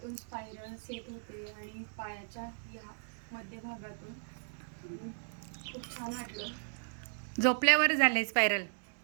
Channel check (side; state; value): left; silent; digital silence